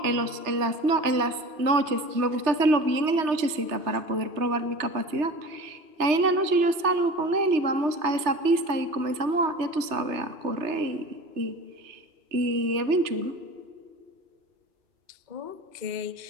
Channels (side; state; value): left; late; 3.2 ms